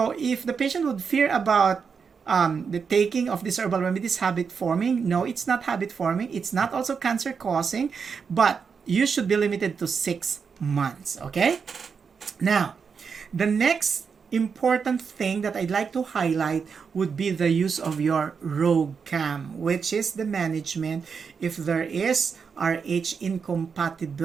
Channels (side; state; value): left; quieter; 5.9 dB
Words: if the patient would fear about the taking of this herbal remedy is habit-forming, no, it's not habit-forming. It's not also cancer-causing, but you should be limited to 6 months, okay? Now, the next important thing that I'd like to highlight would be the use of your Rhogam, which is the management if there is RH